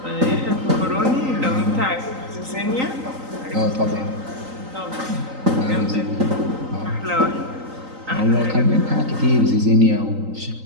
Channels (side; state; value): left; late; 3.9 ms